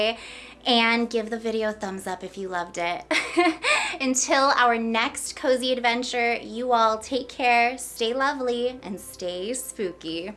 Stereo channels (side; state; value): both; identical; correlation 1.00